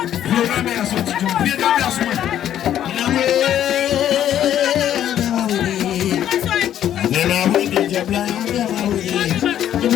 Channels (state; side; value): quieter; right; 10.9 dB